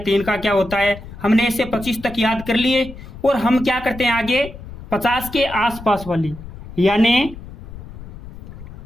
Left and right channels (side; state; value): left; noise; rumble, 14 dB below the sound